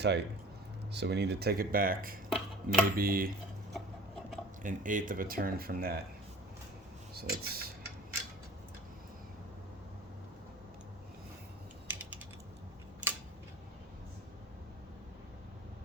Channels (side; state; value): both; normal; correlation 0.45